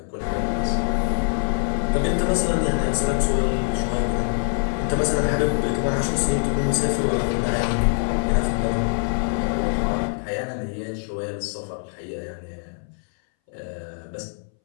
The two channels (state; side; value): silent; right; 62 dB below the other